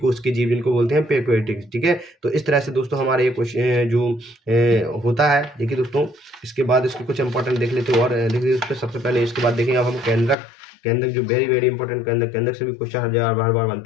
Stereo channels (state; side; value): drops out; right; at 10.4 s